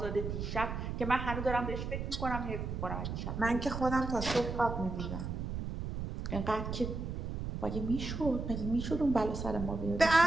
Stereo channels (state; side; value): noise; right; rumble, 4 dB below the sound